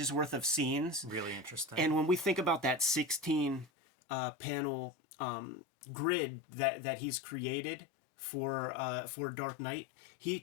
worth of scenes. Really interesting. And when we think about that 16 panel grid that he's created for Dark Knight, he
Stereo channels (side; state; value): right; drops out; at 3.7 s